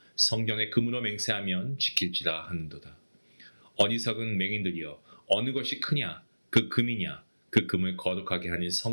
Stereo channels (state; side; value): inverted; both; correlation -1.00